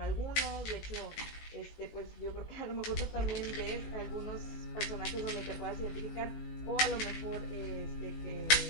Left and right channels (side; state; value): right; late; 19 ms